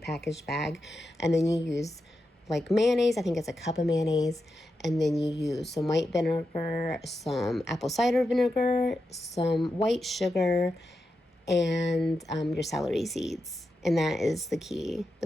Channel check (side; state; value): both; normal; correlation 0.88